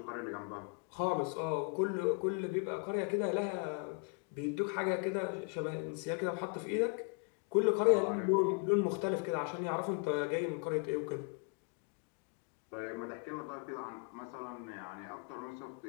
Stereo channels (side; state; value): right; quieter; 35.6 dB